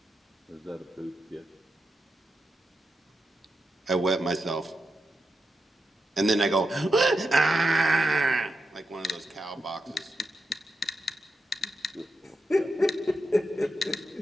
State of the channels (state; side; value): normal; both; correlation 0.87